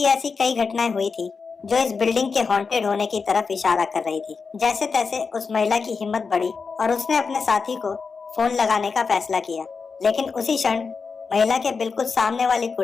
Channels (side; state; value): right; quieter; 5.0 dB